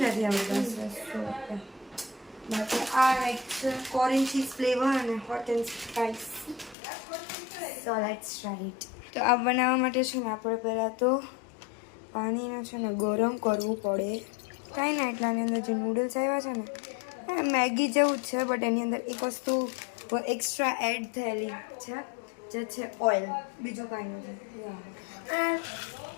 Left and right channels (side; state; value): right; drops out; at 6.8 s